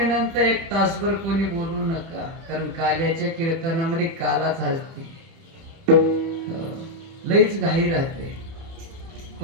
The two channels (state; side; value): late; left; 30 ms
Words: 1 तासभर कोणी बोलू नका. कारण काल्याच्या कीर्तनामध्ये कालाच हसते, लईच घाई राहते.